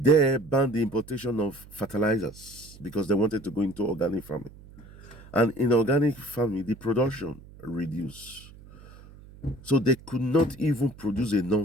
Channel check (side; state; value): right; noise; hum, 20 dB below the sound